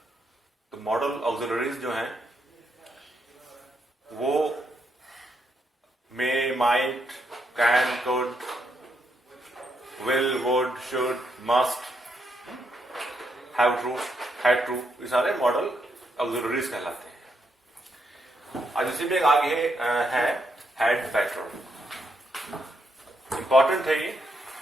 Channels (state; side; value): normal; both; correlation 0.78